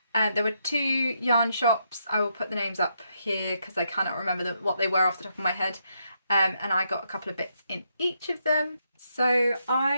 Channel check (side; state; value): both; inverted; correlation -0.78